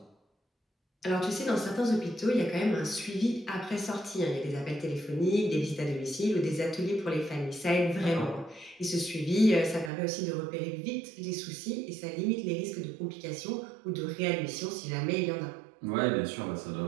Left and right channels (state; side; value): drops out; left; at 9.9 s